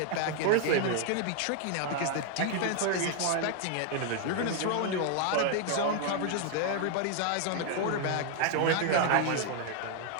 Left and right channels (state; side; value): different; both; correlation 0.00